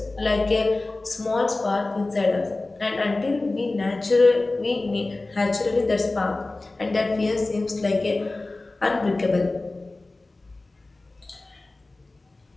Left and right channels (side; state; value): right; quieter; 3.1 dB